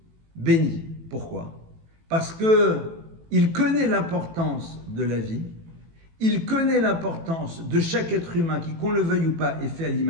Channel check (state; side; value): late; left; 18 ms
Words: bénit. Pourquoi? Parce qu'il connaît l'importance de la vie, il connaît l'importance de chaque être humain qui, qu'on le veuille ou pas, est fait à